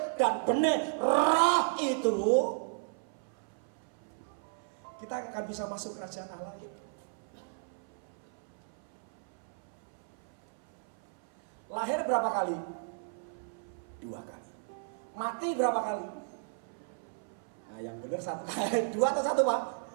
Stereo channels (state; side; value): silent; left; 55 dB below the other